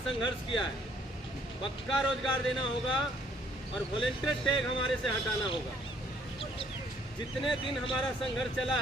संघर्ष किया है। पक्का रोजगार देना होगा और वॉलंटियर टैग हमारे से हटाना होगा। जितने दिन हमारा संघर्ष चला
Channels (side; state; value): both; normal; correlation 0.64